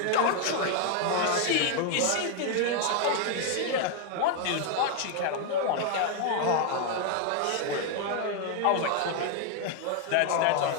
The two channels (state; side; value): different; both; correlation 0.00